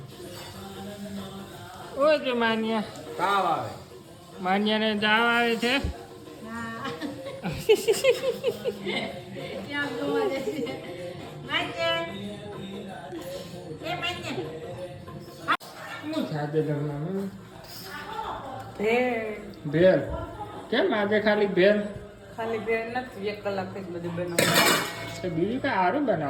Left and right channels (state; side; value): identical; both; correlation 1.00